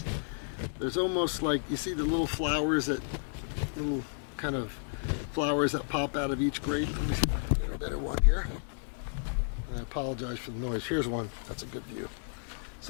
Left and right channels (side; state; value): right; silent; digital silence